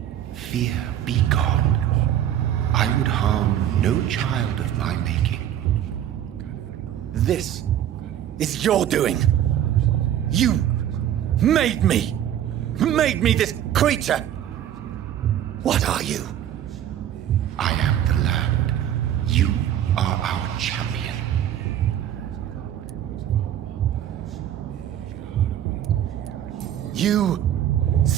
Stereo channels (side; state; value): left; quieter; 10.9 dB